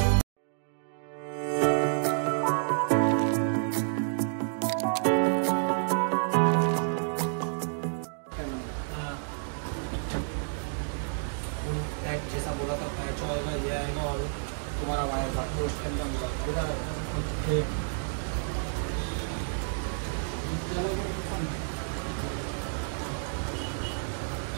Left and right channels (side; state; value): left; silent; digital silence